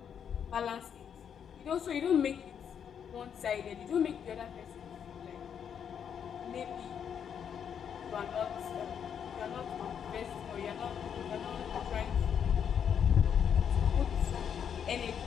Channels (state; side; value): quieter; right; 8.0 dB